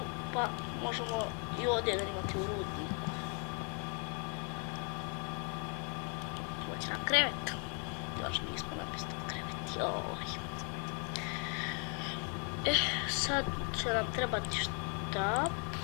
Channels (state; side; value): quieter; right; 39.3 dB